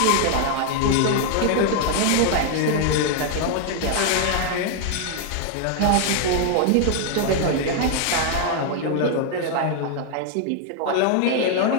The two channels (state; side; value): different; both; correlation 0.00